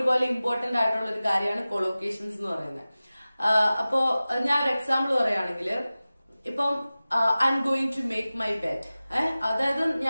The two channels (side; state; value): both; inverted; correlation -0.97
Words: ഇമ്പോർട്ടന്റ് ആയിട്ടുള്ള ഒരു കാര്യമാണ് കൊളോക്കേഷൻസ് എന്ന് പറയുന്നത്. അപ്പോ ഞാൻ ഒരു എക്സാമ്പിൾ പറയുകയാണെങ്കിൽ ഇപ്പം I M going to make my bed. അതായത്